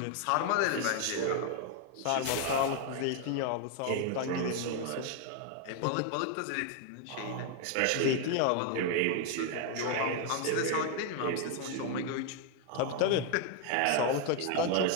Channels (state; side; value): different; both; correlation 0.00